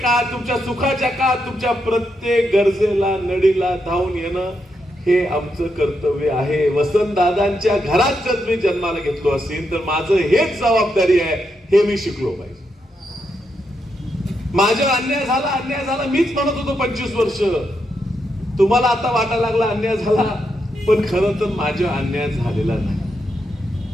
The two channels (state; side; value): normal; both; correlation 0.82